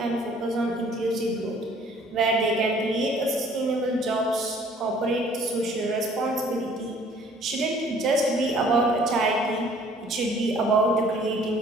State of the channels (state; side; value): normal; both; correlation 0.56